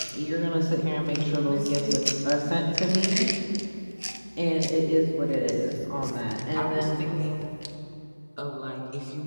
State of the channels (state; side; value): inverted; both; correlation -1.00